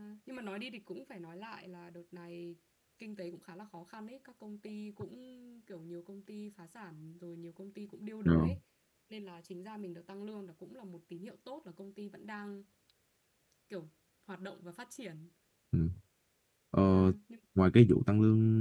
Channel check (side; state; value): both; identical; correlation 1.00